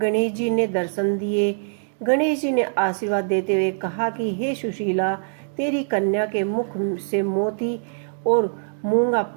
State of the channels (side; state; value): left; silent; digital silence